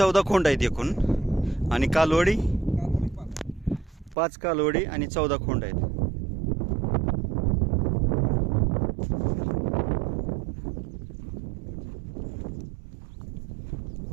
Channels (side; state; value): left; drops out; at 4.2 s